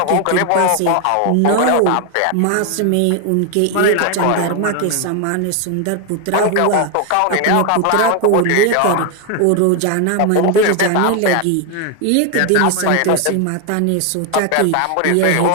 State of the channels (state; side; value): different; both; correlation 0.01